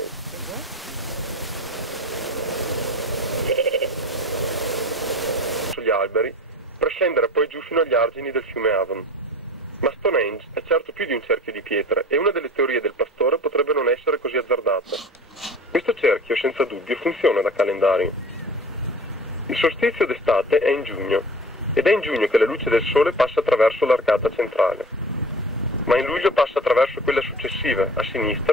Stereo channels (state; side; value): normal; both; correlation 0.38